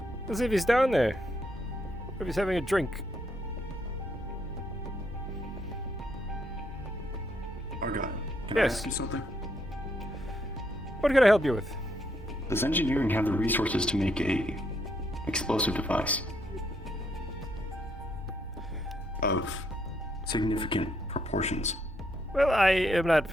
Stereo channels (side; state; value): both; normal; correlation 0.75